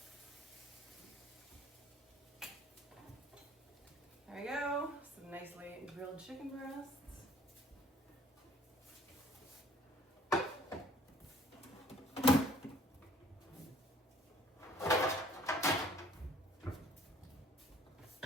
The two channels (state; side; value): normal; both; correlation 0.56